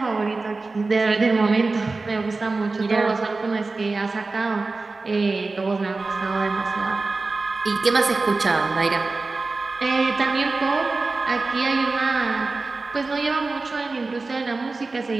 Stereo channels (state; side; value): quieter; left; 3.7 dB